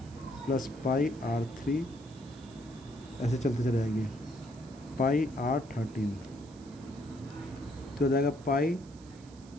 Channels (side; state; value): right; noise; hiss, 24 dB below the sound